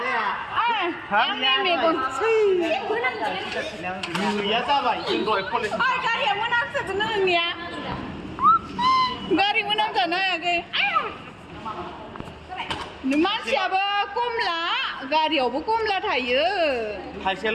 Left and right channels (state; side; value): identical; both; correlation 1.00